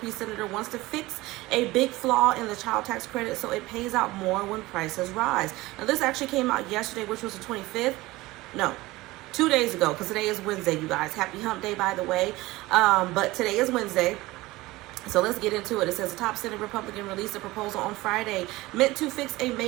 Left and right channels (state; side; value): quieter; left; 19.5 dB